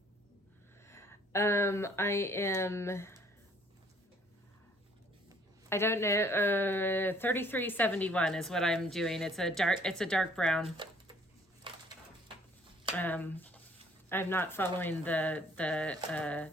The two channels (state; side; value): normal; both; correlation 0.59